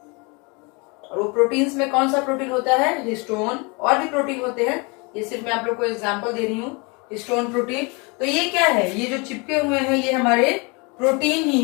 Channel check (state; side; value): quieter; right; 29.6 dB